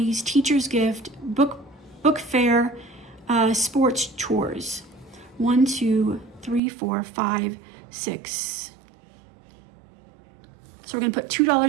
teacher's gift, book fair, sports chores. 1, 2, 3, 4, 5, 6. So we're going to put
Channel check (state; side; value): drops out; left; at 6.6 s